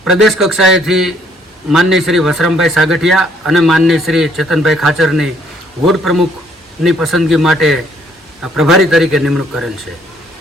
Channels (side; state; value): both; normal; correlation 0.65